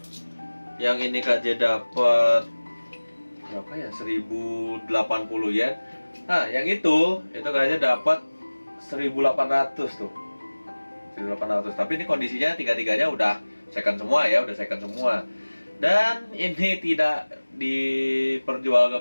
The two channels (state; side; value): inverted; both; correlation -1.00